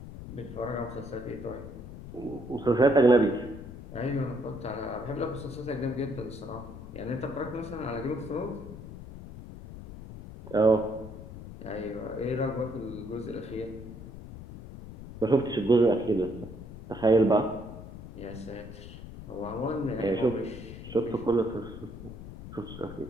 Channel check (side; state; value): left; noise; rumble, 13 dB below the sound